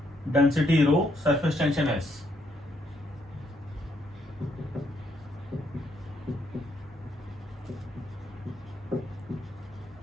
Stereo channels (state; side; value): normal; both; correlation 0.74